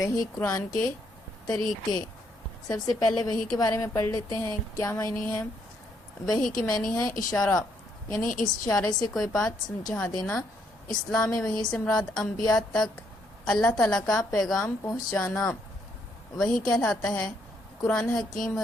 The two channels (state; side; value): normal; both; correlation 0.73